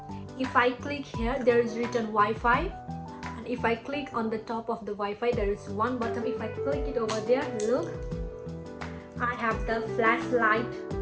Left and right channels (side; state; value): both; identical; correlation 1.00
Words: If I click here, there is written Wi-Fi. If I click on the top of the Wi-Fi, there is one button. If I click it over there, look, I have the flashlight